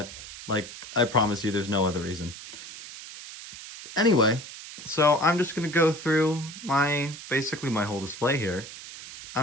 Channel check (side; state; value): right; noise; hiss, 13 dB below the sound